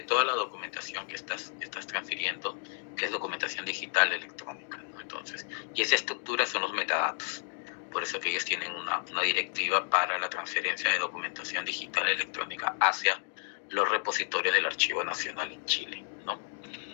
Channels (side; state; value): right; silent; 57 dB below the other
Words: toda la documentación que estás transfiriendo, que es documentación digital electrónica, ¿no? Entonces, y esa estructura son los metadatos. Por eso que ellos tienen una directiva para la transferencia de documentación digital electrónica hacia los repositorios del Archivo Nacional en Chile, ¿no?